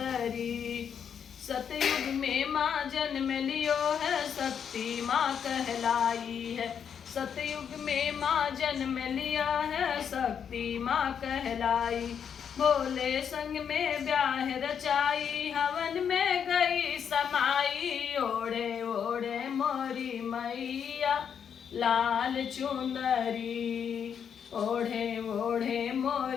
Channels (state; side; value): quieter; right; 7.7 dB